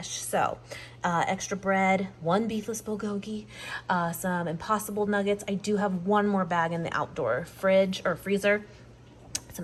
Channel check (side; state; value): both; identical; correlation 1.00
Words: So extra bread, 1 beefless bulgogi, some Impossible nuggets. I do have 1 more bag in the outdoor fridge or freezer. Some